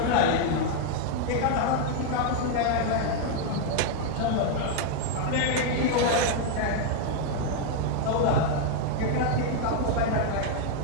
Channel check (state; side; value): different; both; correlation 0.00